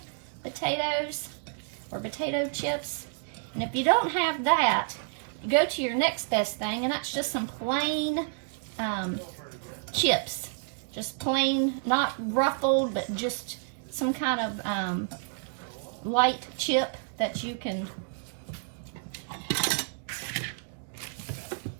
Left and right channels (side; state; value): left; silent; 58 dB below the other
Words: potatoes or potato chips. And if you don't have that, go to your next best thing, and that's just some plain chips. Just plain, not ruffled, but just some kind of light chip that you can